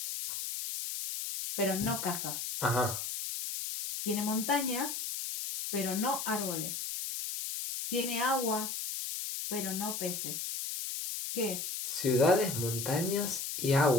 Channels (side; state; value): left; noise; hiss, 4 dB below the sound